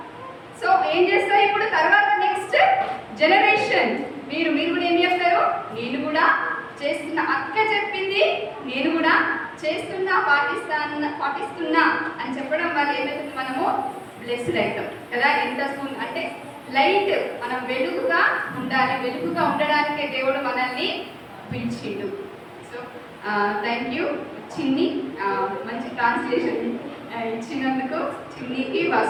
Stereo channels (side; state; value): both; identical; correlation 1.00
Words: సో ఏం చేస్తారు ఇప్పుడు తర్వాత నెక్స్ట్ జనరేషన్ మీరు కూడా ఏం చెప్తారు, నేను కూడా చేస్తున్నా, అక్క చెప్పింది నేను కూడా చేస్తున్నా, పాటిస్తున్నా అని చెప్పడం వల్ల ఏమవుతుంది, మనము బ్లెస్డ్ అవుతాం కదా. ఎంత అంటే లైట్, మనం వెలుగుగా ఉండాలి, వెలుగుగా ఉండడానికే దేవుడు మనల్ని పిలిచిండు. సో థ్యాంక్ యూ చిన్ని, మంచి ట్రాన్స్లేషన్ ఇచ్చినందుకు చిన్నికి.